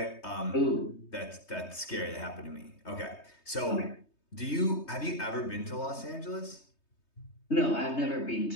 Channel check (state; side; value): late; right; 3.2 ms